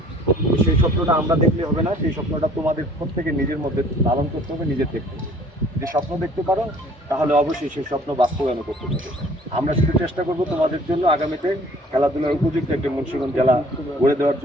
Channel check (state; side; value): normal; both; correlation 0.54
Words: সেই স্বপ্নটা আমরা দেখলে হবে না, সেই স্বপ্নটা তোমাদের প্রত্যেকে নিজের মধ্যে লালন করতে হবে, নিজের দেখতে হবে। যদি স্বপ্ন দেখতে পারো তাহলে অবশ্যই সেই স্বপ্ন বাস্তবায়ন করতে পারবে। আমরা শুধু চেষ্টা করব তোমাদের জন্য আগামীতে খেলাধুলার উপযুক্ত একটি মুন্সিগঞ্জ জেলা গড়ে দেওয়ার